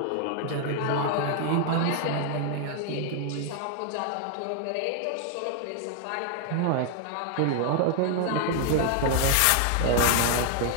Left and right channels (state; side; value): different; both; correlation 0.00